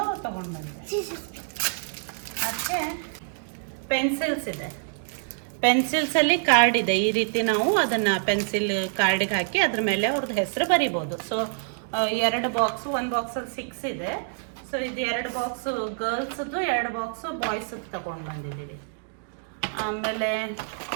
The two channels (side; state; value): left; silent; digital silence